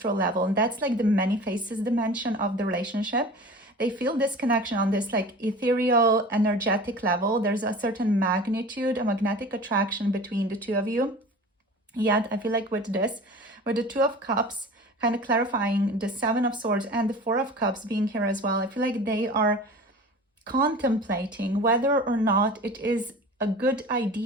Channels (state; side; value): normal; both; correlation 0.38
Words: level, and that's like the many faces dimension of the relationship. They feel this connection on this like ethereal, energetic level. There's a certain magnitude, a magnetic attraction between the two of you. Yet I feel like with the Two of Cups, kind of clarifying the Seven of Swords and the Four of Cups being here as well, I feel like they are contemplating whether or not it is a good